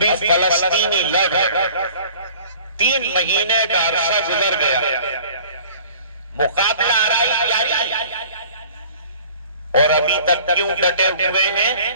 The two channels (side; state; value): both; inverted; correlation -0.48